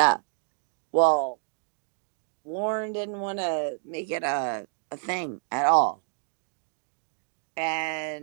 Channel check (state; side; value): silent; left; digital silence